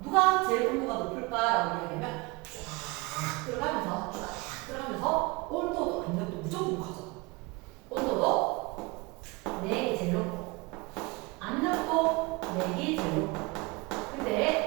누가 제일 온도가 높을까라고 얘기하면 쫙 들어가면서 온도도 압력도 무조건 커져. 온도도 내기 제일 높고 압력도 내기 제일 높고.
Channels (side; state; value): left; quieter; 25.5 dB